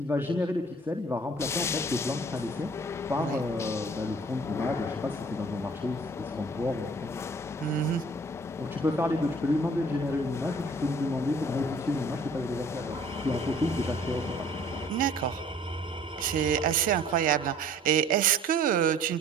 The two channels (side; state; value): both; normal; correlation 0.52